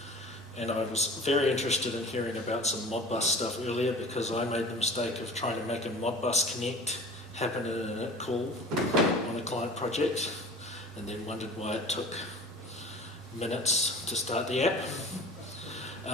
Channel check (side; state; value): both; normal; correlation 0.41